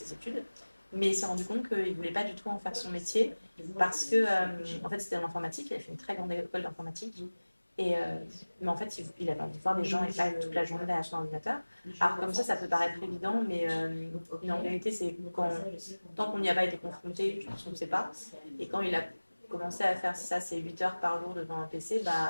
études. Mais il s'est rendu compte qu'il ne voulait pas du tout en faire son métier parce que, en fait, c'était en informatique. Il a fait une très grande école d'informatique. Mais en fait, il avait envie de voir des gens et pas toute la journée derrière son ordinateur. Alors, comme ça peut paraître évident, mais en vérité, c'est tant qu'on n'y a pas été confronté, je pense qu'on ne sait pas. Et quand il a commencé à faire ça, c'est 8 heures par jour devant un PC,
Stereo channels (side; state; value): both; inverted; correlation -1.00